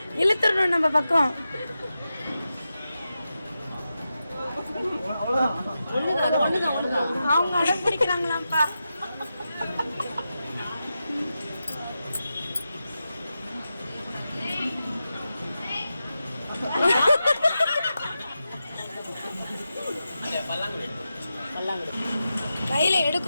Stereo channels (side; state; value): both; inverted; correlation -0.90